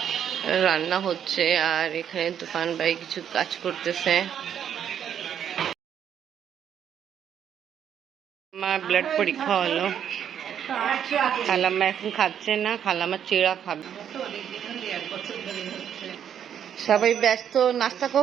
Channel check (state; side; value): quieter; left; 9.1 dB